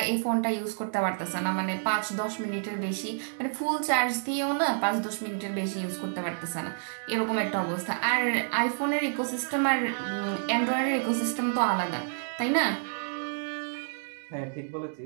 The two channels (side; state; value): left; silent; digital silence